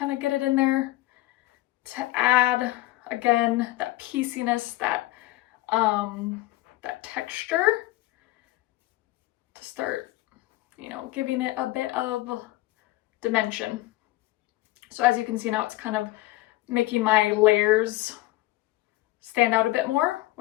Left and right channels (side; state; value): right; quieter; 18.2 dB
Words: of get it in there to add, again, that pieceiness, that texture, to start, you know, giving it a bit of dimension. So as you can see now, it's kind of making my layers stand out a bit more,